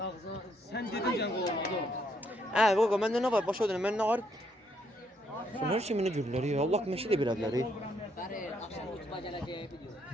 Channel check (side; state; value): both; normal; correlation 0.72